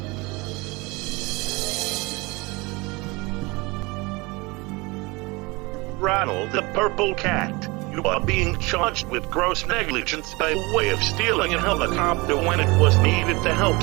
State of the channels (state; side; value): quieter; left; 24.8 dB